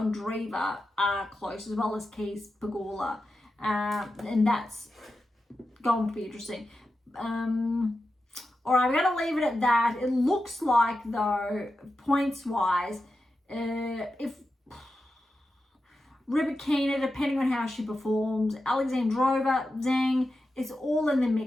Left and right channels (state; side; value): normal; both; correlation 0.90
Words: are close, as well as Keys, Pegula. And that's going to be interesting. All right, we're going to leave it at that. It looks like, though, points-wise, if Rybakina, depending on how she performs, Alexandrova, Zhang, it's all in the